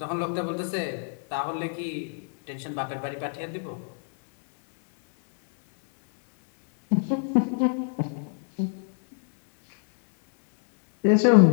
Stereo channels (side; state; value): right; silent; digital silence